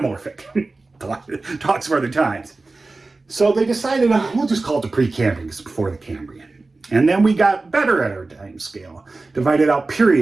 Talks for other times. So they decided, we'll just call it the Precambrian because it's before the Cambrian. And then we got better at our time scale, divided out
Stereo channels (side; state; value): left; quieter; 3.4 dB